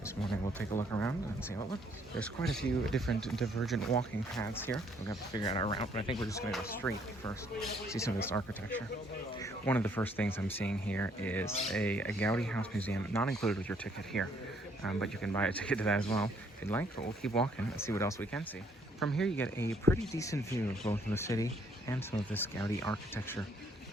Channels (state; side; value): normal; both; correlation 0.66